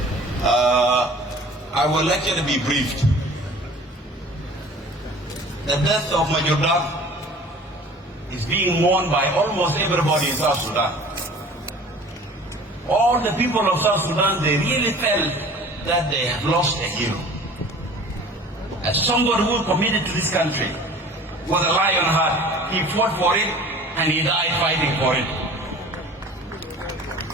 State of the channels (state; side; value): normal; both; correlation 0.46